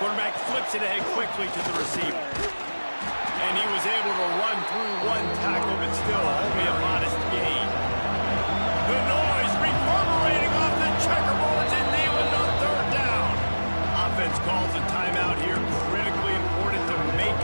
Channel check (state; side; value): inverted; both; correlation -1.00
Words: flips it ahead quickly to the receiver. And he was able to run through one tackle, but still only a modest gain. The noise reverberating off the checkerboards in Neyland on 3rd down. Offense calls a timeout here. Critically important to make